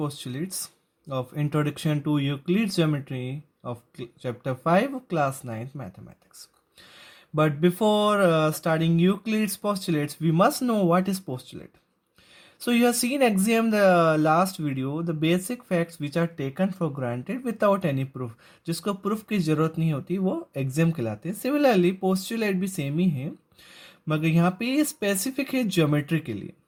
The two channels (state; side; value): identical; both; correlation 1.00